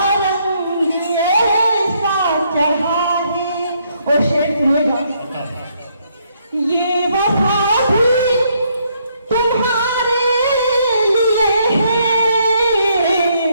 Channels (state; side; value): inverted; both; correlation -0.72